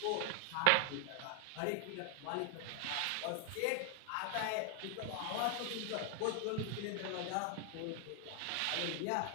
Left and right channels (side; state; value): both; different; correlation 0.00